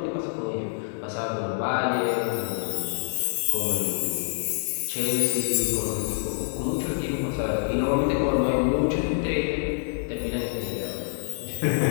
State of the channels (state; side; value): silent; right; digital silence